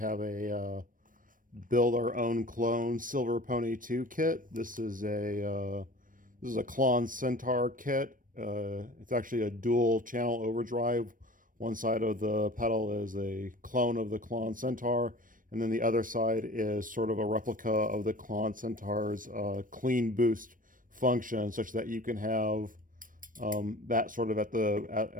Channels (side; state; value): left; late; 0.40 ms